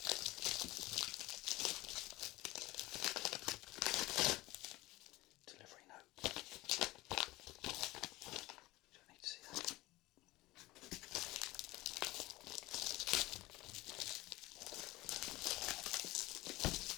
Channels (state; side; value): quieter; right; 19.4 dB